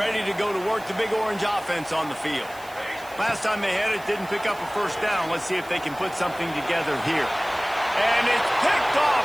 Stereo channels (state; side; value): noise; right; hiss, 21 dB below the sound